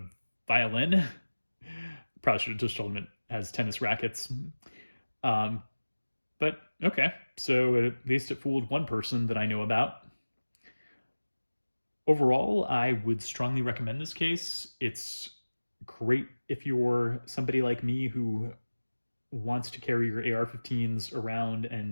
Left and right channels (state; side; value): inverted; both; correlation -1.00